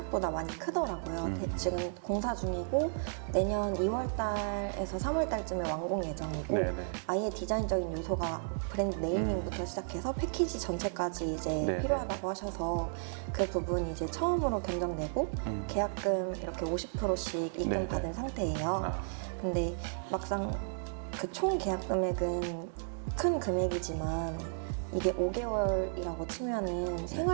많이 크더라고요. 지금 공사 중이고 내년 2월달에서 3월달쯤에 완공 예정이고 아예 디자인적인 요소가 브랜드 네이밍부터 시작해서 패키지 전체까지 이제 필요하다고 하셔서 그 부분이 이제 처음으로 견적내고 계약금 이렇게 50%씩 입금 받은 상태예요. 근데 막상 그 총 계약 금액은 큰 금액이지만 이게 5개월이라고 치면은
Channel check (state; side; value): silent; left; digital silence